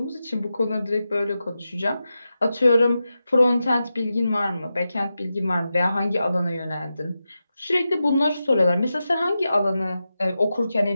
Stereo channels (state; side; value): inverted; both; correlation -0.91